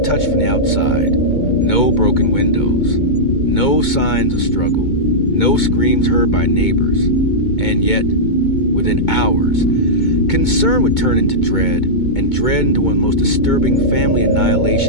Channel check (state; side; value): late; right; 2.2 ms